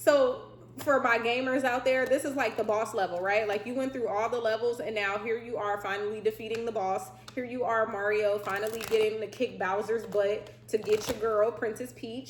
for my gamers out there, this is like the boss level, right? Like you went through all the levels and now here you are finally defeating the boss. Here you are, Mario, finally getting to kick Bowser's butt to get your girl, Princess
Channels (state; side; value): identical; both; correlation 1.00